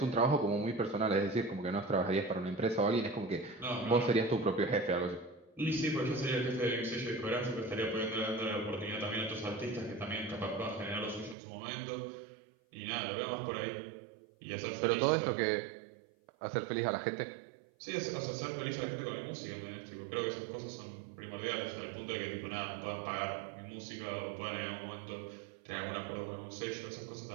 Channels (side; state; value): left; drops out; at 11.4 s